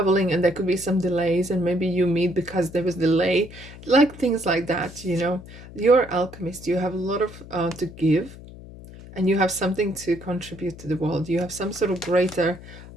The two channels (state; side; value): noise; left; hum, 16 dB below the sound